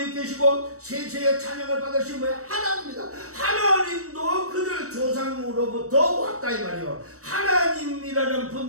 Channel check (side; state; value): left; late; 0.65 ms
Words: 계시고 세세의 찬양을 받으신 뭐야? 하나님입니다. 하나님도 그들 조상으로부터 왔다 이 말이요. 하나님이라는